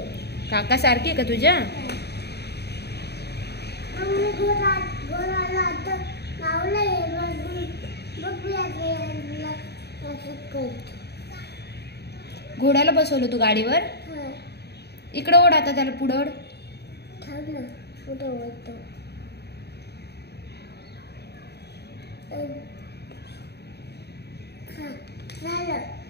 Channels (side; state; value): right; late; 0.48 ms